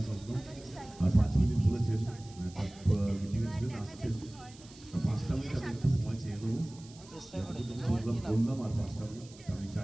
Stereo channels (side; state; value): right; noise; hiss, 22 dB below the sound